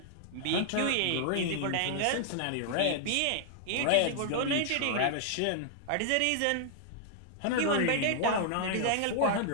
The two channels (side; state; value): both; different; correlation -0.01